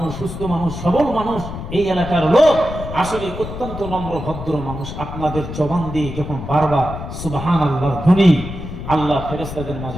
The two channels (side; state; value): left; noise; rumble, 9 dB below the sound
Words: সুস্থ মানুষ, সবল মানুষ, এই এলাকার লোক আসলে অত্যন্ত নম্র ভদ্র মানুষ। আপনাদের জবান দিয়ে যখন বারবার সুবহানাল্লাহর ধ্বনি আল্লাহ ফেরেশতাদের